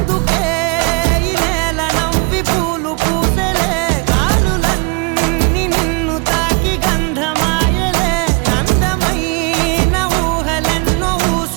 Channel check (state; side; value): quieter; left; 32.3 dB